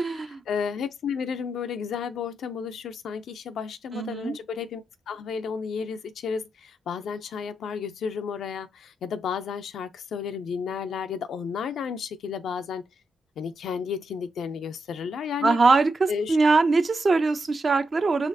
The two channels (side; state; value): both; normal; correlation 0.83